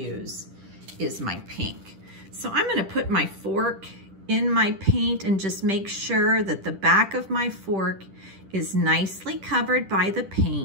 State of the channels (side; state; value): left; late; 10 ms